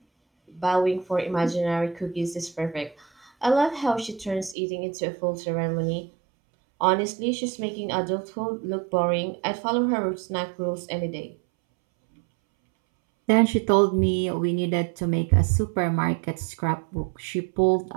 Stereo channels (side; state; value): left; drops out; at 4.5 s